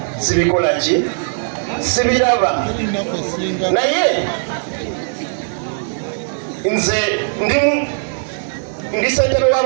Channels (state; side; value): silent; left; 67 dB below the other